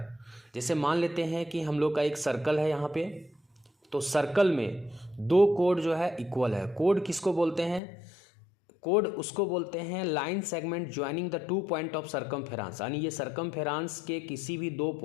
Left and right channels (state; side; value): drops out; right; at 7.8 s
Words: जैसे मान लेते हैं कि हम लोग का एक सर्कल है यहाँ पे, तो सर्कल में दो कोड जो है इक्वल है। कोड किसको बोलते हैं? कोड उसको बोलते हैं line segment joining the two point of circumference, यानी ये सर्कमफेरेंस के किसी भी दो